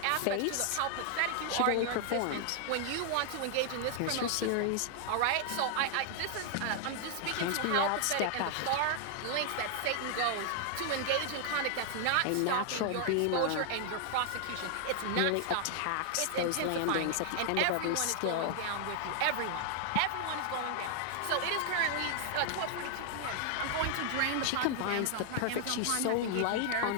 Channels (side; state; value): both; different; correlation 0.00